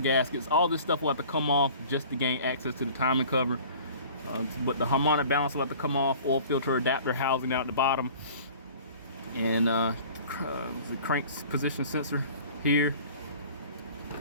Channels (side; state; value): both; inverted; correlation -0.46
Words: All this stuff will have to come off just to gain access to the timing cover. But the harmonic balance will have to come off, oil filter adapter housing down at the bottom, and the crank position sensor here.